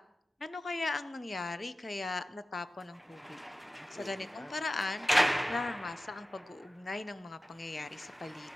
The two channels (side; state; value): both; normal; correlation 0.96